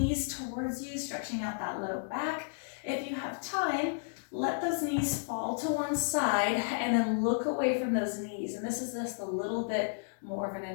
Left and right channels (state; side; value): silent; right; digital silence